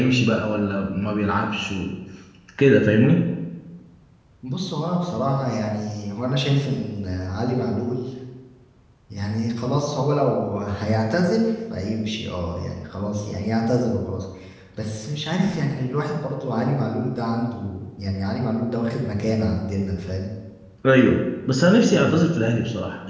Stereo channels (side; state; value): both; identical; correlation 1.00